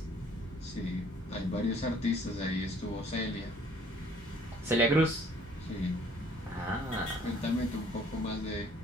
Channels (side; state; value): both; normal; correlation 0.58